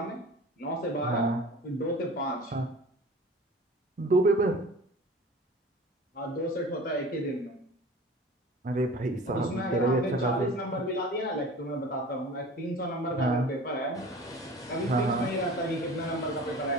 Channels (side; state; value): both; normal; correlation 0.40